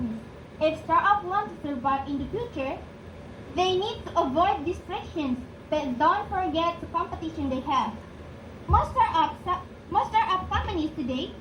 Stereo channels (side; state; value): both; identical; correlation 1.00